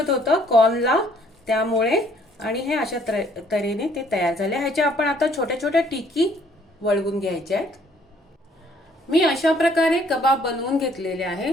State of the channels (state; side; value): normal; both; correlation 0.62